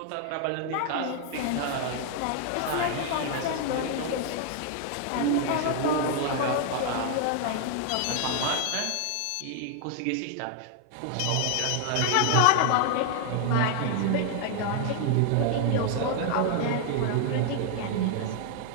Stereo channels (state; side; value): different; both; correlation 0.00